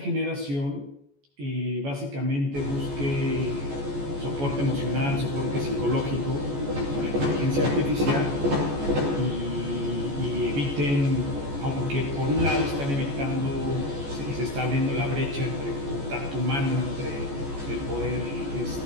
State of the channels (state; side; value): late; left; 14 ms